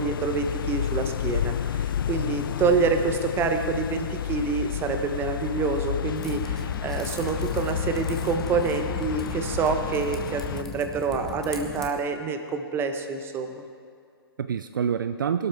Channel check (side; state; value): both; normal; correlation -0.07